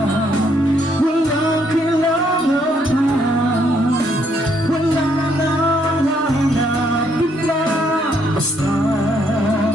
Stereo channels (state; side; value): normal; both; correlation 0.71